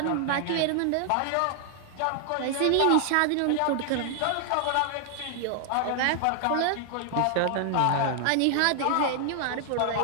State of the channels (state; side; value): different; both; correlation 0.00